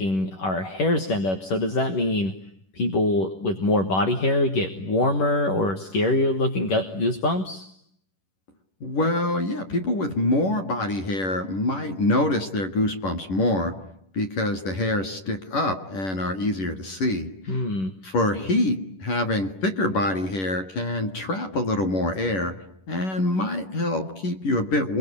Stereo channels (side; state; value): right; late; 11 ms